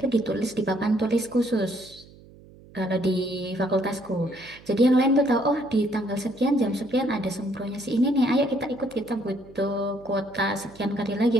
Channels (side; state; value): right; noise; hum, 23 dB below the sound